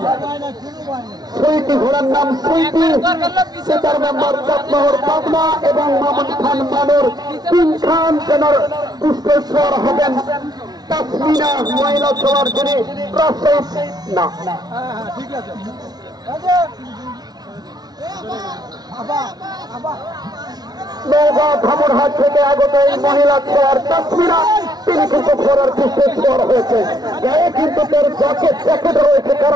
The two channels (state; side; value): late; left; 0.19 ms